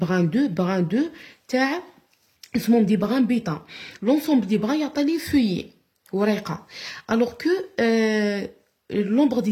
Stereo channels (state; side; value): identical; both; correlation 1.00